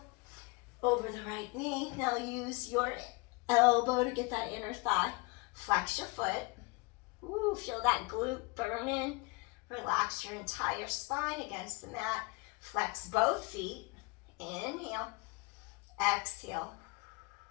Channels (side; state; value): right; quieter; 27.3 dB